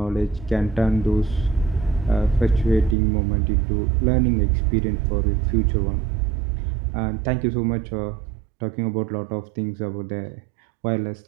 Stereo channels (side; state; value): left; drops out; at 3.0 s